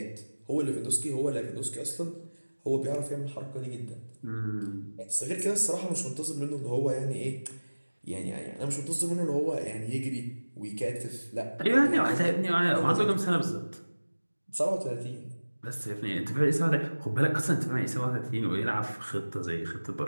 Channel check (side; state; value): both; inverted; correlation -1.00